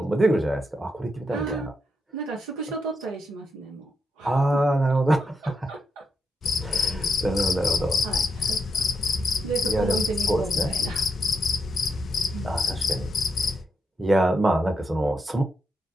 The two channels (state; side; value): normal; both; correlation 0.83